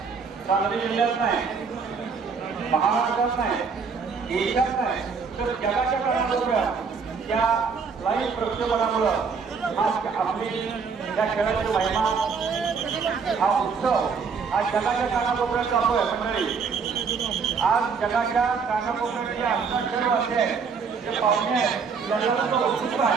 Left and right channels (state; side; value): quieter; left; 5.5 dB